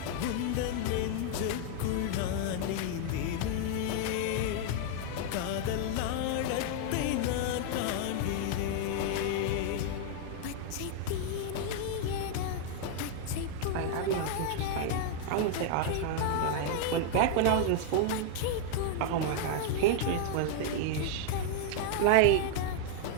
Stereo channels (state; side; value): different; both; correlation 0.00